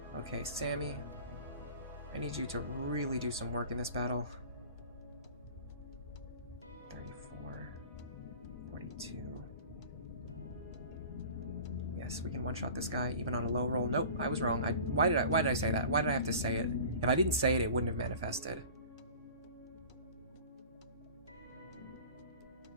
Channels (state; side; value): inverted; both; correlation -0.41